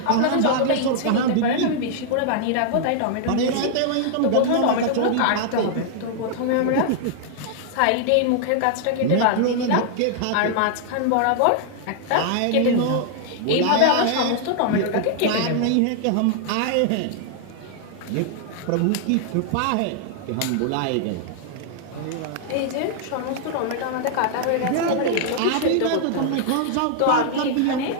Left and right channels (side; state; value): both; different; correlation 0.00